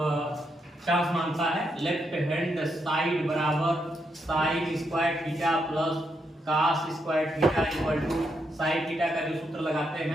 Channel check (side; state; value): both; normal; correlation 0.80